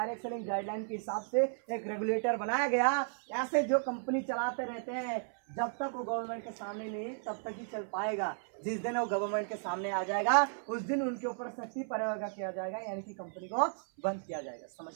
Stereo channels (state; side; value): silent; left; 55 dB below the other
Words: सेलिंग गाइडलाइन के हिसाब से एक रेगुलेटर बनाया गया। ऐसे जो कंपनी चलाते रहते हैं जब तक वो गवर्नमेंट के सामने नहीं तब तक ही चल पाएगा। जिस दिन वो गवर्नमेंट के सामने आ जाएगा उस दिन उनके ऊपर सख्ती प्रयोग किया जाएगा, यानी कि कंपनी को बंद किया जाएगा। समझ